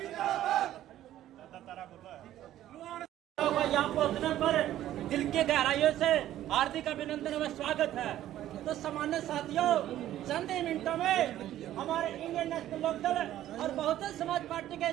यहाँ पहुँचने पर दिल की गहराइयों से हार्दिक अभिनंदन व स्वागत है। तो सामान्य साथियों, चंद ही मिनटों में हमारे इंडियन नेशनल लोकदल और बहुजन समाज पार्टी के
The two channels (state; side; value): quieter; left; 12.9 dB